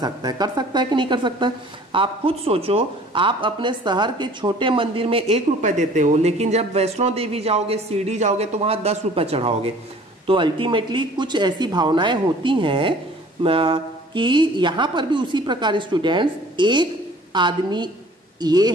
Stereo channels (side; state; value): both; normal; correlation 0.50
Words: है कि नहीं कर सकता है? आप खुद सोचो, आप अपने शहर के छोटे मंदिर में 1 रुपए देते हो, लेकिन जब वैष्णो देवी जाओगे, शिरडी जाओगे तो वहां 10 रुपए चढ़ाओगे। तो अल्टीमेटली कुछ ऐसी भावनाएं होती हैं कि यहां पर भी उसी प्रकार स्टूडेंट्स, एक आदमी ये